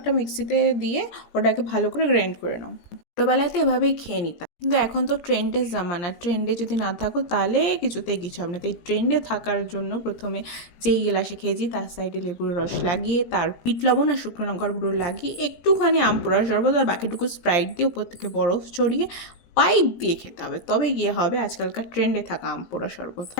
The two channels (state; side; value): late; right; 17 ms